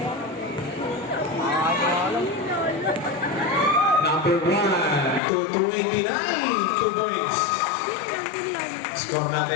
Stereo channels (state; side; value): drops out; right; at 5.2 s